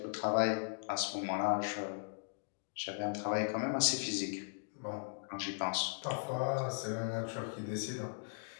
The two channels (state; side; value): silent; right; digital silence